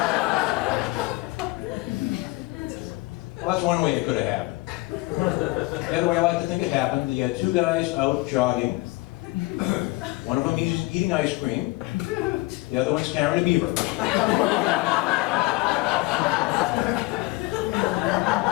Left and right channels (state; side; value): quieter; right; 22.1 dB